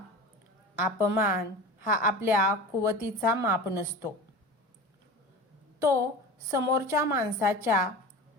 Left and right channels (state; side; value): normal; both; correlation 0.33